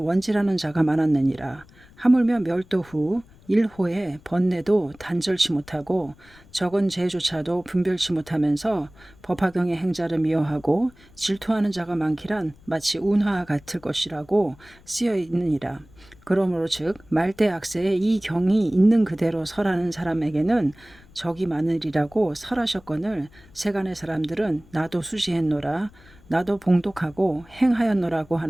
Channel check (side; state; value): left; noise; rumble, 26 dB below the sound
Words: 자가 많았느니라. 하물며 멸도 후 일호에 번뇌도 단절치 못하고 적은 죄조차도 분별치 못하면서 법화경의 행자를 미워하고 질투하는 자가 많기란 마치 운하와 같을 것이라고 쓰여 있느니라. 그러므로 즉 말대 악세에 이 경이 있는 그대로 설하는 사람에게는 적이 많으리라고 설하셨거늘 세간의 사람들은 나도 수지했노라 나도 봉독하고 행하였노라고